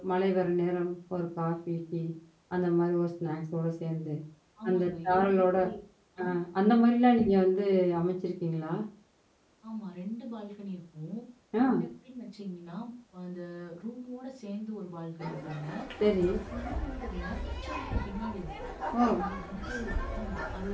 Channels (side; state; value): both; identical; correlation 1.00